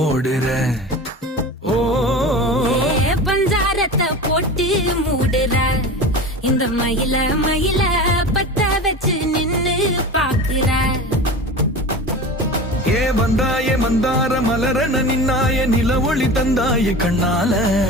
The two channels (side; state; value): both; normal; correlation 0.32